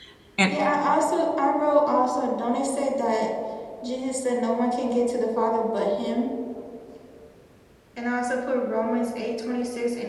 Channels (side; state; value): both; identical; correlation 1.00